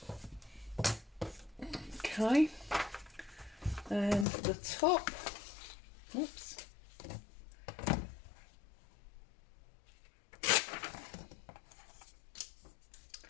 Okay, and the top, oops.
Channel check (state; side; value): drops out; right; at 4.2 s